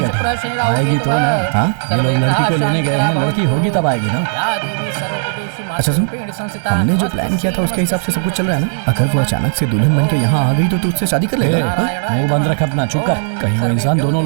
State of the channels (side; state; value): left; silent; digital silence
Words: आएगी तो ना। हाँ, ये लोग लड़की को लेने गए हैं, लड़की होगी तब आएगी ना। अच्छा सुन, हमने जो प्लान किया था उसके हिसाब से सब कुछ चल रहा है ना? अगर वो अचानक से दुल्हन बन के यहाँ आ गई तो तू उससे शादी कर लेगा? मुंह बंद रख अपना, चुप कर, कहीं वो इंसान दोनों